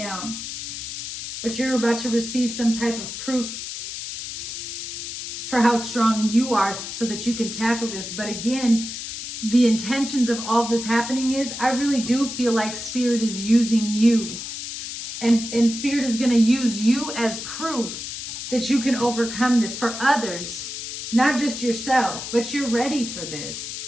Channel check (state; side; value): noise; left; hiss, 7 dB below the sound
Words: But you're about to receive some type of proof for how strong you are so that you can tackle this. But again, the intentions of all this happening is, I really do feel like Spirit is using you. And Spirit is going to use you as proof that you can overcome this for others, not just yourself, but you're ready for this.